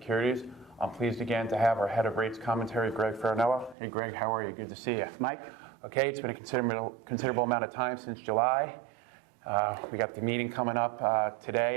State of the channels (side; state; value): left; drops out; at 3.8 s